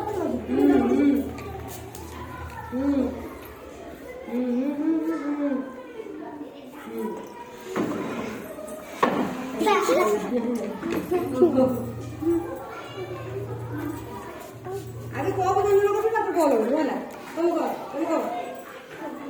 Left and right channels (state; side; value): identical; both; correlation 1.00